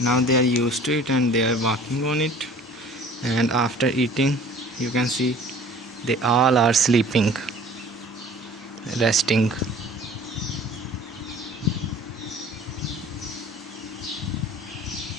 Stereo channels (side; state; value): both; normal; correlation 0.48